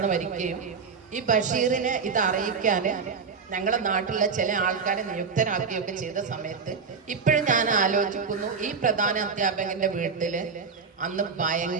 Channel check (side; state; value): left; quieter; 5.4 dB